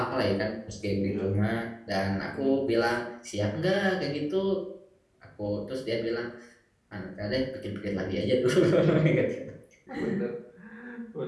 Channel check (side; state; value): both; identical; correlation 1.00